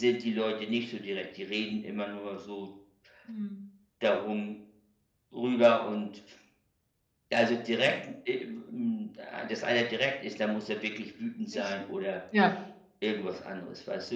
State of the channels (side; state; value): both; identical; correlation 1.00